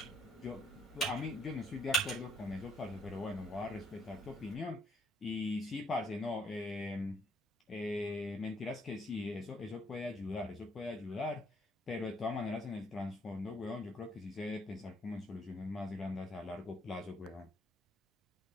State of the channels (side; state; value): both; normal; correlation 0.68